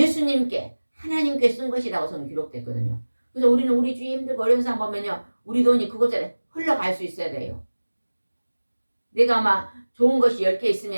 하나님께 쓴 것이라고 성경 기록됐거든요. 그래서 우리는 우리 주위 힘들고 어려운 사람 보면요, 우리 돈이 그곳에 흘러갈 수 있어야 돼요. 내가 막 좋은 것이 10개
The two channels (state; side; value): inverted; both; correlation -1.00